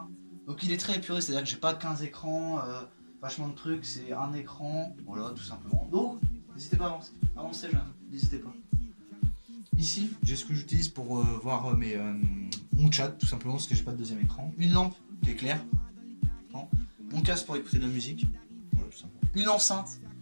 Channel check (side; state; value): both; inverted; correlation -1.00